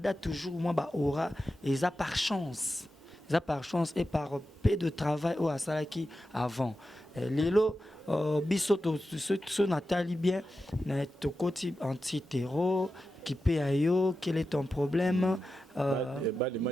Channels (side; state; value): both; normal; correlation 0.91